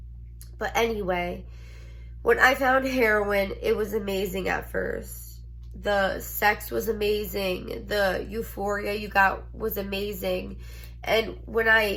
But anyway, when I found heroin, it was amazing at first. The sex was amazing. The euphoria you got was amazing. And when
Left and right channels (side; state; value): both; identical; correlation 1.00